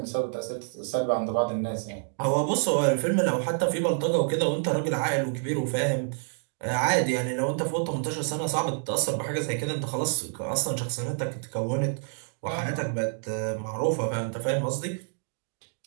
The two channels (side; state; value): left; silent; 59 dB below the other